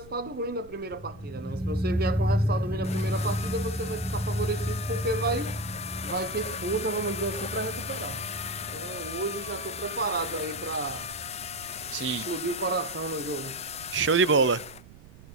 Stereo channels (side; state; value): right; noise; rumble, 20 dB below the sound